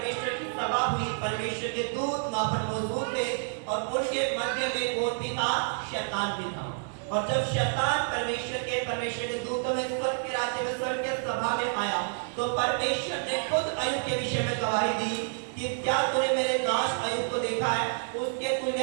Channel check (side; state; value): left; silent; digital silence